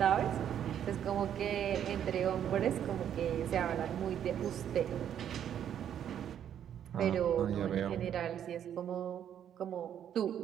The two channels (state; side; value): quieter; left; 9.6 dB